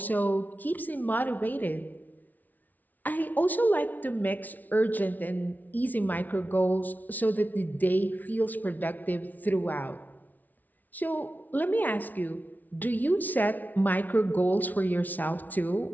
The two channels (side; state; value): right; late; 0.079 ms